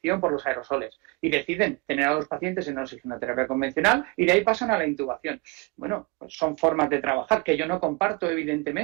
por los aerosoles. Y deciden tener a los pacientes en una oxigenoterapia convencional y de ahí pasan a la intubación. Bueno, pues son formas de trabajar que yo no comparto,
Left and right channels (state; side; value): quieter; left; 26.4 dB